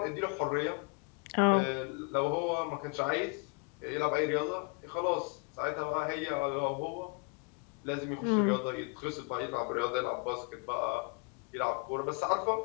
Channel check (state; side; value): quieter; right; 34.3 dB